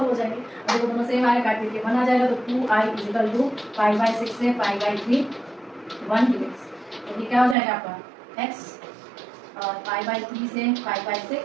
हो जाएंगी। अगर वो दोनों सेम आए काट के 1 आ जाएगा, तो 2i is equal to pi by 6 से पाई बाई 3 1 dx। तो ये क्या हो जाएगा आपका x और पाई बाई 3 से पाई बाई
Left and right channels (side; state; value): left; drops out; at 7.6 s